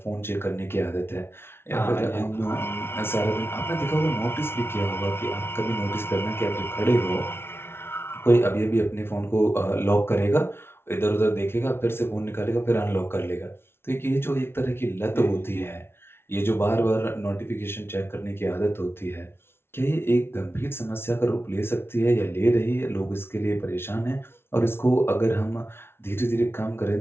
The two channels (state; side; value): late; right; 0.12 ms